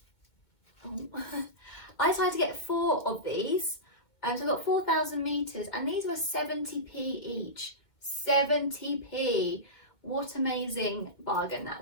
I decided to get 4 of these. So I got 4,000 meters, and these were 70p each. 70p. What amazing bargain that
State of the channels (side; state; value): right; late; 2.2 ms